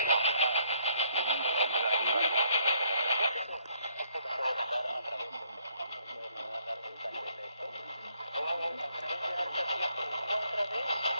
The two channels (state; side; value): inverted; both; correlation -0.67